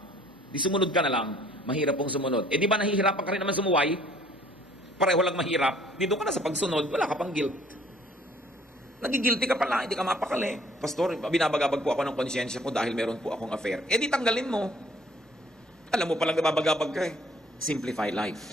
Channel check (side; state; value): both; normal; correlation 0.58